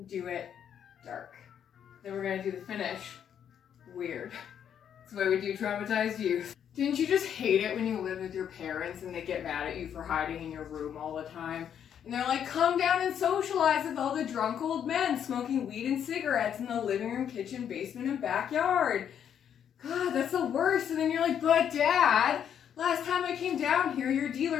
do it dark. Then we're gonna do the finish weird. That's the way we do traumatized youth. Didn't you just hate it when you live with your parents and they get mad at you for hiding in your room all the time? And they're like, come down and socialize with all the drunk old men smoking weed and cigarettes in the living room, kitchen, basement, and backyard. God, that's the worst. And then you're like, but Dad, last time I came down here, your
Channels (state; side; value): quieter; right; 8.9 dB